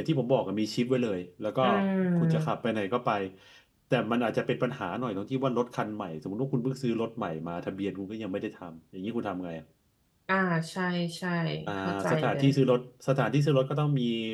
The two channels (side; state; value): both; identical; correlation 1.00